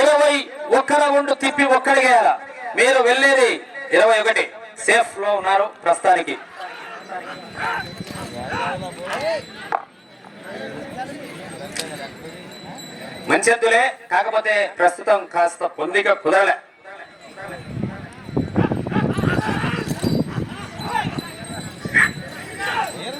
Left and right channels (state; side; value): identical; both; correlation 1.00